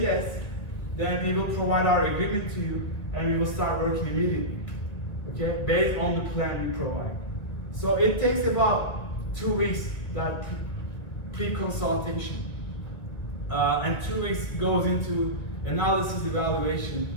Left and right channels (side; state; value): right; late; 2.1 ms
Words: then we will provide our agreement to you and we will start working immediately, okay, based on the plan we provide. So it takes about 2 weeks, that pre-consultation. And 2 weeks goes into analysis, evaluation,